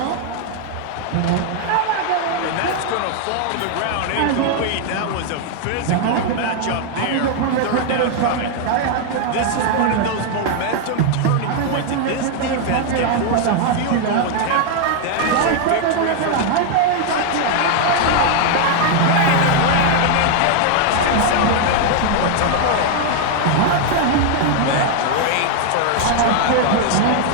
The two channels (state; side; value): different; both; correlation 0.00